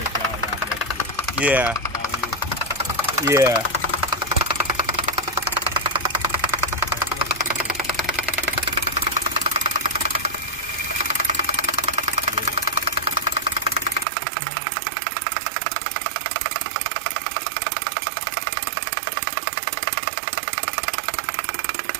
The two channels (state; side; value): drops out; left; at 14.1 s